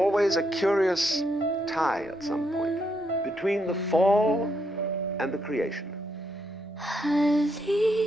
a curious tie at some point between the fall and the creation.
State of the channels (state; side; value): normal; both; correlation 0.78